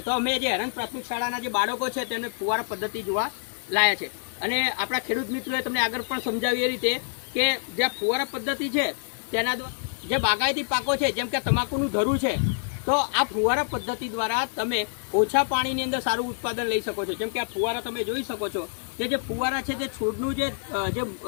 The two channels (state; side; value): silent; right; digital silence